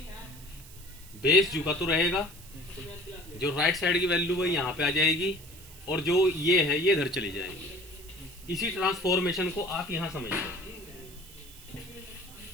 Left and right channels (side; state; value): right; noise; hiss, 19 dB below the sound